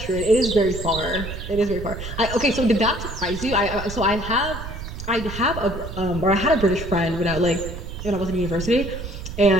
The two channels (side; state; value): right; noise; rumble, 9 dB below the sound